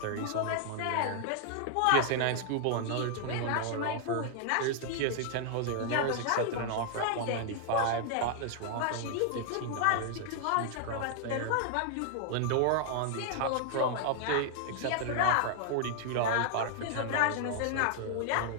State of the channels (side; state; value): both; different; correlation 0.00